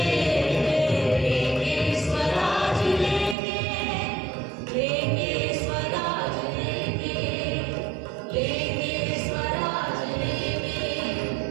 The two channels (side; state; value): left; drops out; at 3.4 s